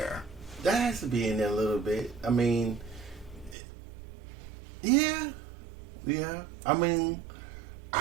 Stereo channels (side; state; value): left; drops out; at 3.6 s